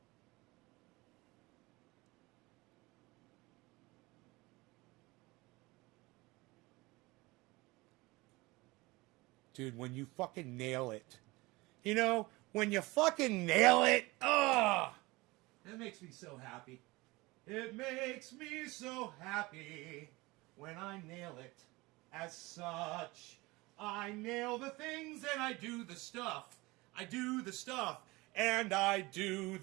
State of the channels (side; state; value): left; quieter; 22.3 dB